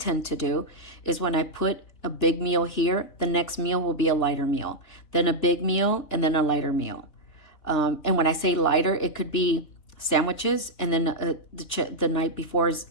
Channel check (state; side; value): late; right; 3.4 ms